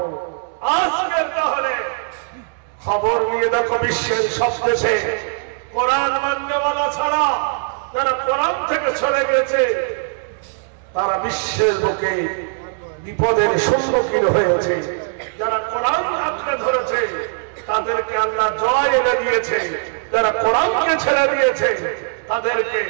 আজকের তাহলে খবর নিয়ে দেখো বিশ্বের সব দেশে কোরআন মাননেওয়ালা ছাড়া যারা কোরআন থেকে সরে গেছে তারা বিশ্বের বুকে বিপদের সম্মুখীন হয়েছে। যারা কোরআন আঁকড়ে ধরেছে তাদেরকে আল্লাহ জয় এনে দিয়েছে, যারা কোরআনকে ছেড়ে দিয়েছে তাদেরকে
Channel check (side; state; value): left; silent; digital silence